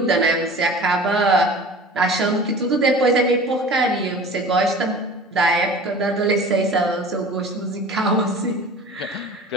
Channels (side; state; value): both; normal; correlation 0.40